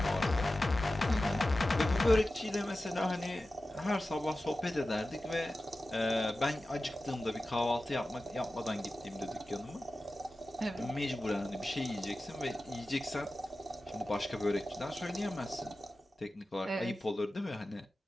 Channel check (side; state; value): both; normal; correlation 0.95